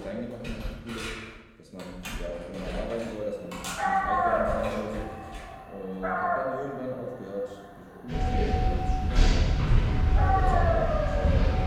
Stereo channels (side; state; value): both; identical; correlation 1.00